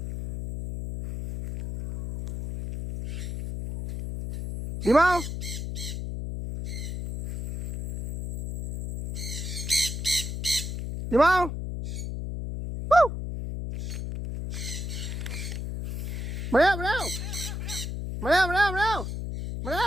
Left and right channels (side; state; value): left; noise; hum, 5 dB below the sound